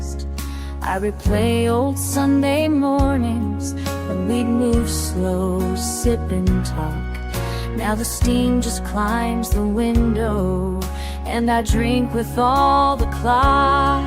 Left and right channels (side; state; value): both; identical; correlation 1.00